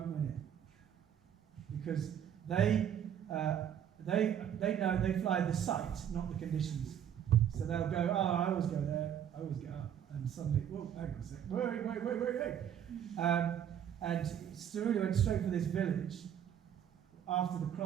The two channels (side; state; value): left; quieter; 9.4 dB